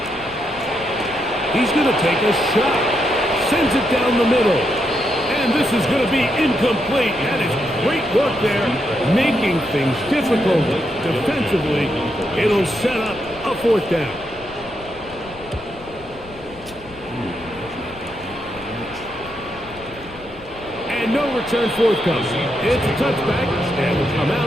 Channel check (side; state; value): left; noise; rumble, 20 dB below the sound